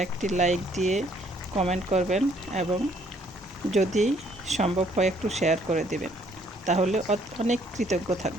একটি লাইক দিয়ে কমেন্ট করবেন এবং যদি সম্ভব হয় একটু শেয়ার করে দেবেন, তাহলে অনেক কৃতজ্ঞ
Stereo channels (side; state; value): both; normal; correlation 0.65